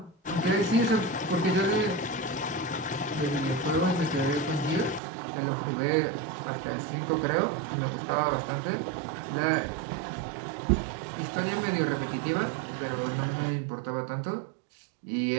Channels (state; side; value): drops out; left; at 5.0 s